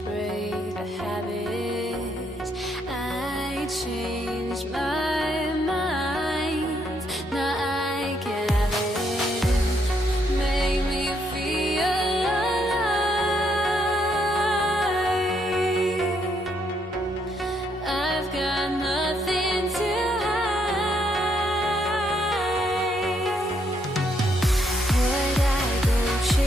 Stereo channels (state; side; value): normal; both; correlation 0.74